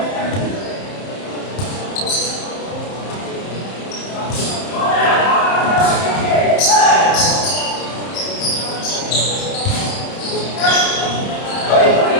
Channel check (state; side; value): late; right; 30 ms